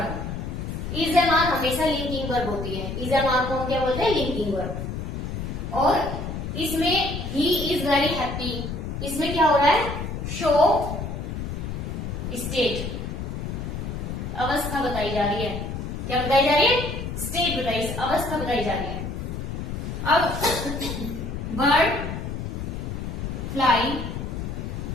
is am are हमेशा लिंकिंग वर्ब होती है, इज एम आर को हम क्या बोलते हैं, लिंकिंग वर्ब। और इसमें ही इज वेरी हैप्पी, इसमें क्या हो रहा है, शो स्टेट, अवस्था बताई जा रही है। क्या बताई जा रही है, स्टेट बताई, अवस्था बताई जा रही है। अब bird fly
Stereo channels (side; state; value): left; noise; rumble, 5 dB below the sound